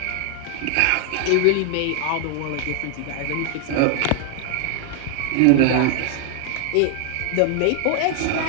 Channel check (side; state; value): both; different; correlation 0.00